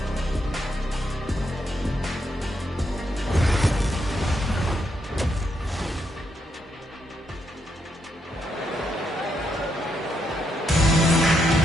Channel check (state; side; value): normal; both; correlation 0.79